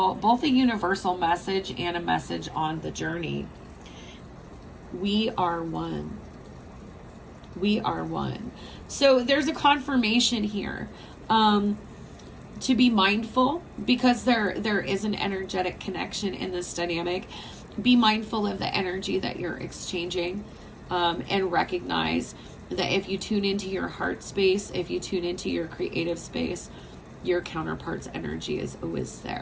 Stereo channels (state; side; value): identical; both; correlation 1.00